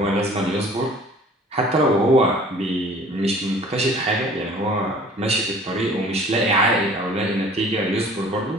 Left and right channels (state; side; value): normal; both; correlation 0.50